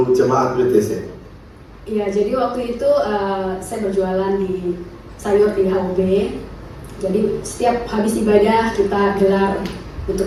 jemaat WTC? Iya, jadi waktu itu saya berjualan di sayur di HOB. Jadi setiap habis ibadah kita gelar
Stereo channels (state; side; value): identical; both; correlation 1.00